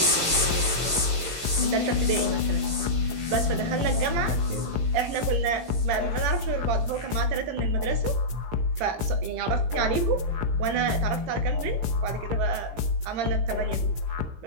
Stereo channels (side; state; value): left; late; 17 ms